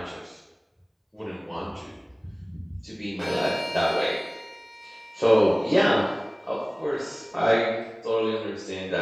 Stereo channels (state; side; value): identical; both; correlation 1.00